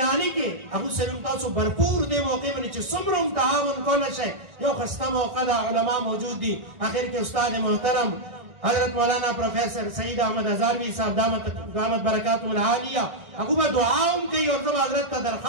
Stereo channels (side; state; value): left; late; 1.4 ms